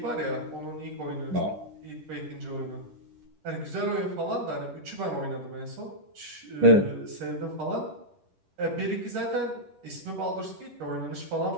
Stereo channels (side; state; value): left; late; 10 ms